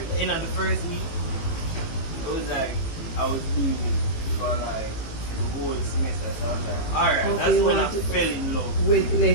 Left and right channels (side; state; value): right; late; 18 ms